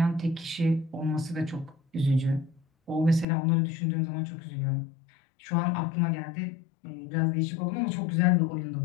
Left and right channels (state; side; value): drops out; right; at 3.2 s